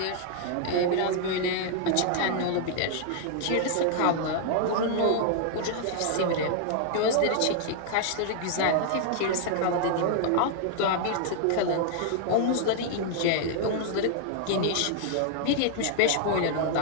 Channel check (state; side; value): different; both; correlation -0.01